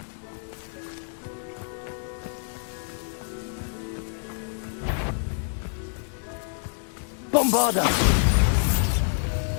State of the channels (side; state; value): right; silent; 60 dB below the other